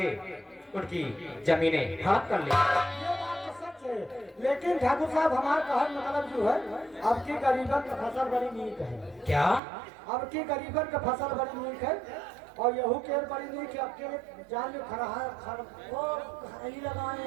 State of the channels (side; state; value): left; drops out; at 9.6 s